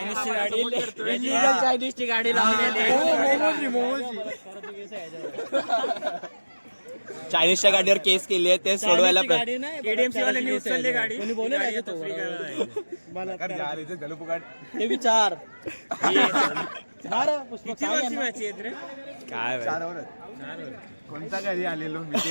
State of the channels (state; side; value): inverted; both; correlation -1.00